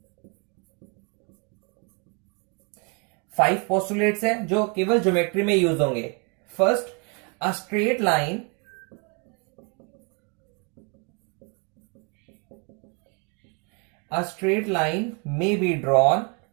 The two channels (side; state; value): left; quieter; 34.0 dB